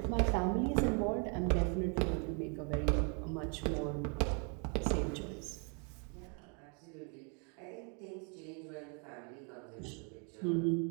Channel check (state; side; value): quieter; left; 37.4 dB